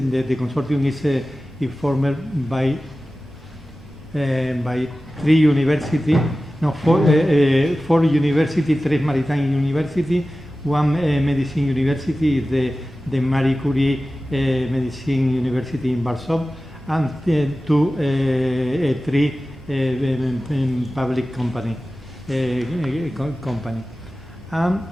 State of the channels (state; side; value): normal; both; correlation 0.95